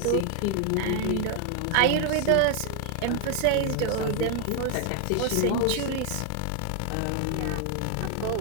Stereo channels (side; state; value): both; different; correlation 0.00